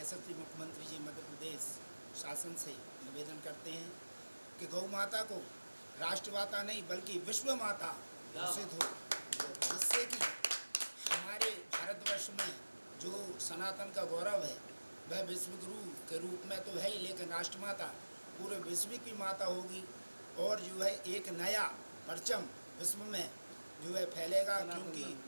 मुख्यमंत्री जी मध्य प्रदेश शासन से निवेदन करते हैं कि गौ माता को राष्ट्र माता नहीं बल्कि विश्व माता घोषित हो, जिससे कि हमारे भारतवर्ष में जो सनातन का गौरव है वह विश्व गुरु के रूप में तो है ही, लेकिन राष्ट्र माता पूरे विश्व की माता होगी और जो है एक नया परचम विश्व में जो है फैलेगा, क्योंकि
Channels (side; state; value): both; inverted; correlation -1.00